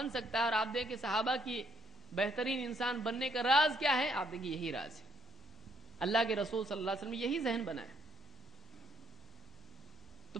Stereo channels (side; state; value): both; normal; correlation 0.70